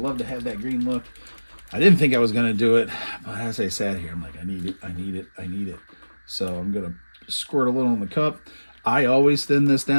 to have that green look. I didn't think I was going to do it, but as I sat here, I'm like, I need it. So I'm going to squirt a little in the cup. I always thin this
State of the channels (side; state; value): both; inverted; correlation -1.00